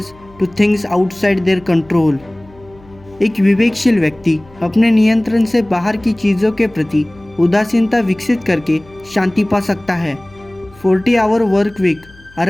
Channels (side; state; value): left; noise; hum, 25 dB below the sound